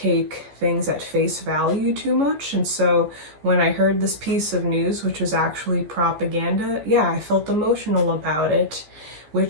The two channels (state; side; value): late; left; 14 ms